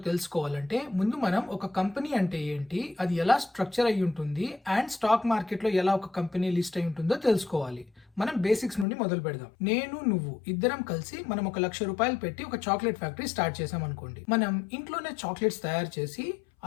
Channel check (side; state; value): right; drops out; at 8.8 s